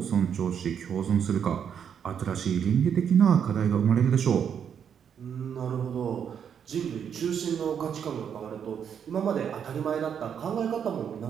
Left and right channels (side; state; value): left; quieter; 8.0 dB